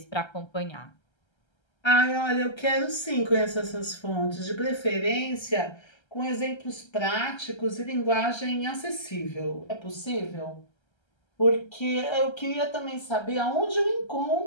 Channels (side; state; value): right; late; 1.3 ms